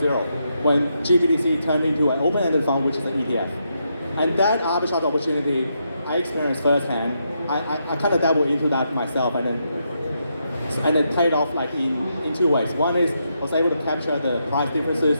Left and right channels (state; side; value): inverted; both; correlation -0.81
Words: when GBTC turned into an open-ended fund, which is an ETF. And that arbitrage opportunity I experienced firsthand. I kind of dabbled into that myself and then paid off like in two ways. One is I was able to capture the price differences